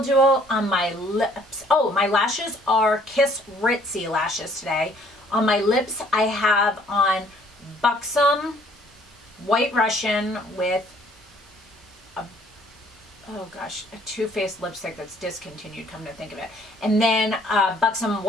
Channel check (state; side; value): normal; both; correlation 0.60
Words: Duo. On my lips, oh, my lashes are Kiss Ritzy lashes today. On my lips, I have on Buxom White Russian with a, oh gosh, a Too Faced lipstick that's discontinued, come to think of it. And then Buxom